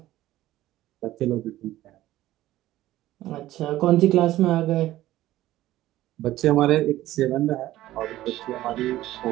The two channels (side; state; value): left; quieter; 15.1 dB